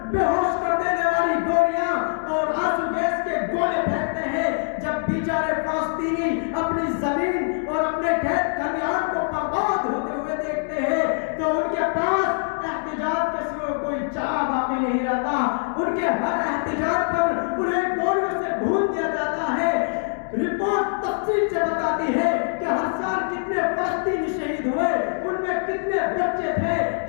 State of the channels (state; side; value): silent; right; 63 dB below the other